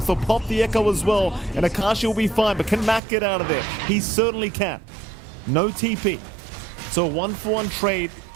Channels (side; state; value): left; drops out; at 3.0 s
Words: He'll pop the Echo as well, and Akashi will be fine, but can Mac get out of there? He certainly can. No TP. So a 1-for-1 trade,